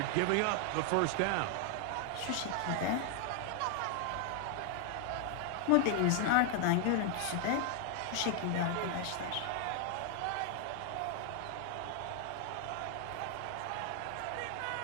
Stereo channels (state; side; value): different; both; correlation 0.00